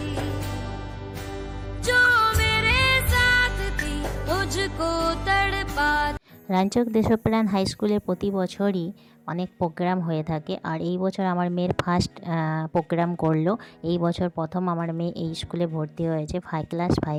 जो मेरे साथ थी मुझको तड़पा। রানীচক দেশপ্রাণ হাই স্কুলে প্রতি বছরই অনেক প্রোগ্রাম হয়ে থাকে, আর এই বছর আমার মেয়ের ফার্স্ট প্রোগ্রাম করলো। এই বছর প্রথম আমার মেয়ে এই স্কুলে ভর্তি হয়েছে, ক্লাস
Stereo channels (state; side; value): identical; both; correlation 1.00